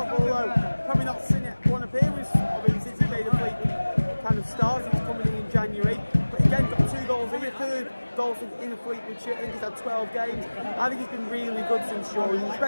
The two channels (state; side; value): inverted; both; correlation -1.00